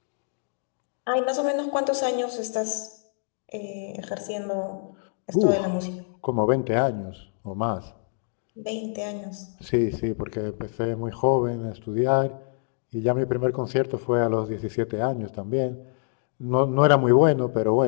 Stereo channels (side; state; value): right; silent; digital silence